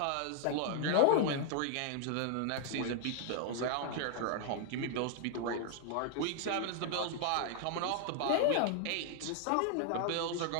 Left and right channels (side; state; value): both; different; correlation 0.00